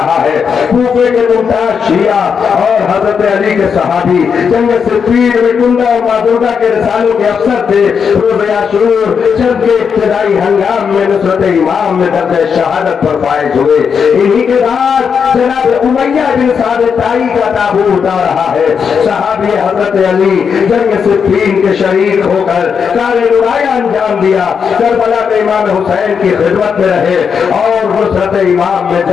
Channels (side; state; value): right; quieter; 6.6 dB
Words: है। कूफे के मुमताज शिया और हजरत अली के सहाबी जंग सिफ़ीन में कुंदा और मादुर्गा के रसालों के अफसर थे। रोज़े आशूर जंग के इब्तिदाई हंगाम में नुसरत इमाम में दर्जे शहादत पर फायज हुए। इन्हीं के बाद जनाब उमैया बिन साद ताई का ताबू उतार रहा है। सहाबी हजरत अली जंग सिफ़ीन के शरीक होकर कारे नुराया अंजाम दिया। करबला में इमाम हुसैन की खिदमत में रहे और नुसरत इमाम में